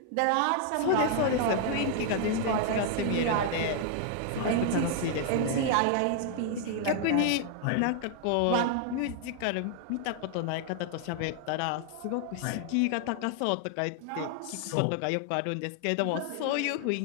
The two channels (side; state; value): both; different; correlation 0.00